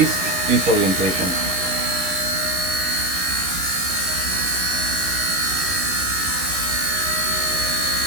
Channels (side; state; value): left; late; 11 ms